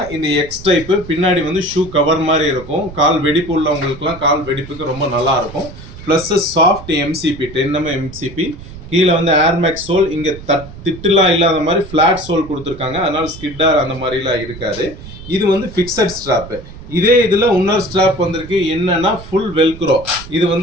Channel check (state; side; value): noise; right; rumble, 15 dB below the sound